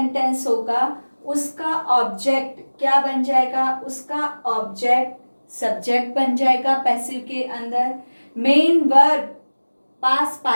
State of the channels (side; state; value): both; inverted; correlation -1.00